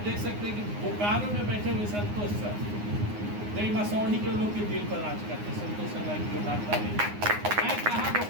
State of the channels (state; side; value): late; left; 9.6 ms